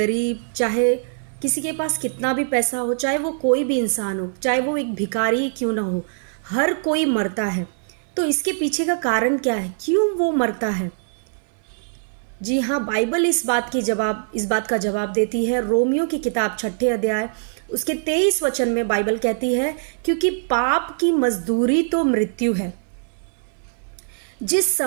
चाहे किसी के पास कितना भी पैसा हो, चाहे वो कोई भी इंसान हो, चाहे वो एक भिखारी क्यों ना हो, हर कोई मरता है। तो इसके पीछे का कारण क्या है, क्यों वो मरता है? जी हाँ, बाइबल इस बात का जवाब देती है। रोमियो की किताब 6 अध्याय उसके 23 वचन में बाइबल कहती है, क्योंकि पाप की मजदूरी तो मृत्यु है। जिस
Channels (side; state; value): left; silent; 60 dB below the other